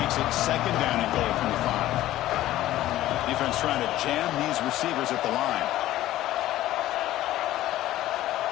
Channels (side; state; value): right; quieter; 14.6 dB